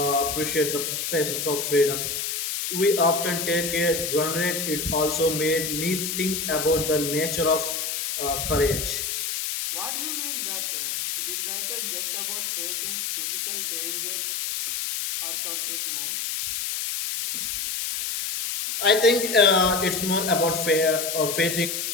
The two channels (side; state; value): left; noise; hiss, 2 dB below the sound